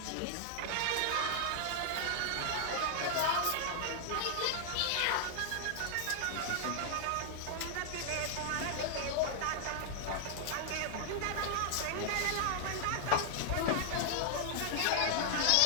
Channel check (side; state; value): both; different; correlation 0.00